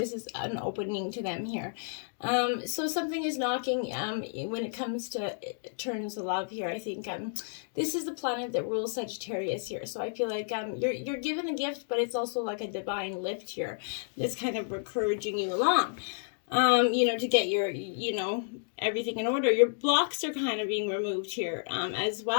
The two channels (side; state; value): right; silent; digital silence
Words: is an opening to them here. So something is knocking, when it comes to terms of love here. I think, this is the planet that rules Sagittarius here. So I feel like, you're given a gift, but it's also like a divine lift here that's kind of encouraging you along. To get your, everything in order. Your blocks are kind of being removed here, as